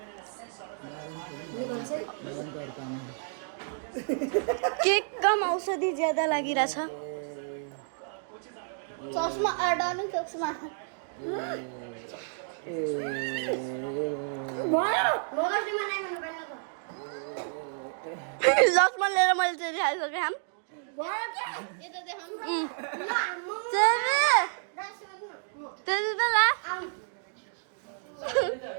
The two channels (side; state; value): left; silent; digital silence